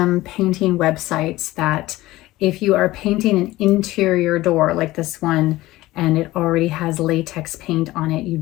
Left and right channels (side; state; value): right; quieter; 17.6 dB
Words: painting websites that if you are painting an interior door like this one and it already has latex paint on it, you